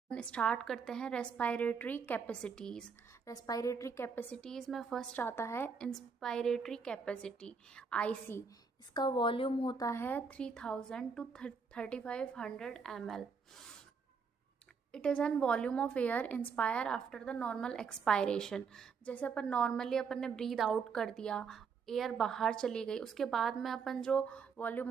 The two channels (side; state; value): left; quieter; 5.6 dB